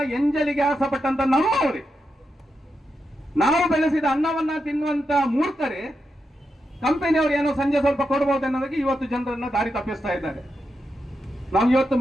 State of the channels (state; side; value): normal; both; correlation 0.86